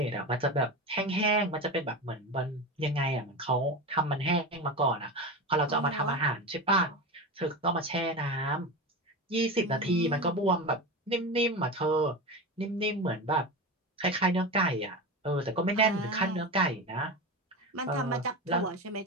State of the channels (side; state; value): both; normal; correlation 0.23